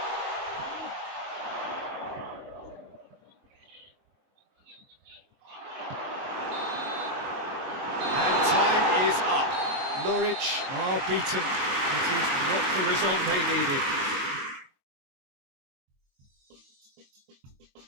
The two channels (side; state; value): left; late; 22 ms